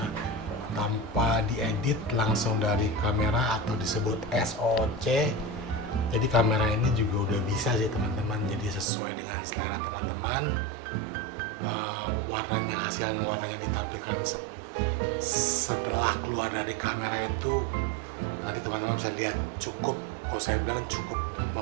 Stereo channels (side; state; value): left; drops out; at 8.8 s